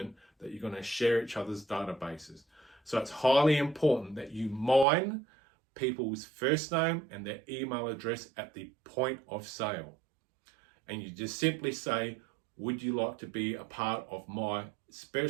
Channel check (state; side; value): drops out; left; at 4.9 s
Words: that you're going to share each other's databases. So it's highly important that you mine people's first name and their email address at the point of sale. And you just simply say, would you like to be a part of my